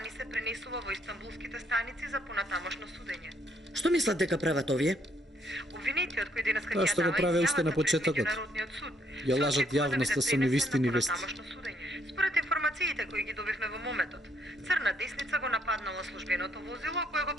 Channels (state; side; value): normal; both; correlation 0.70